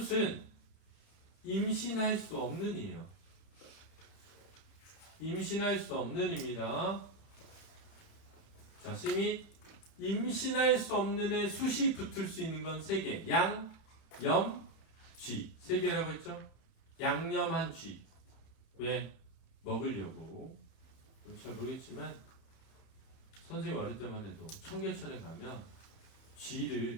임신할 수 없는 이에요. 임신할 수 없는 입니다. 자, 심이 임신할 수 없는 애 숫이 붙을 수 있는 건 3개. 양, 염, 쥐. 3개라고 했죠? 양념한 쥐. 왜? 먹으려고. 잘 모르겠지만 선생님 어릴 때만 해도 청계천에 가면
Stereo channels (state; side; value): late; right; 31 ms